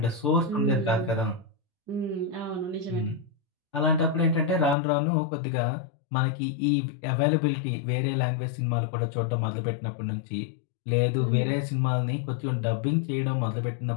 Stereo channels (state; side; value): drops out; right; at 4.8 s